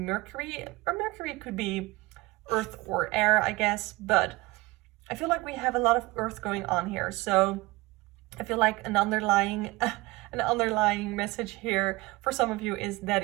or Mercury could be earth or air, I guess, but I feel like we have a lot of earth going on here. So I feel like an underlying message here for some of you is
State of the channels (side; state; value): left; quieter; 21.8 dB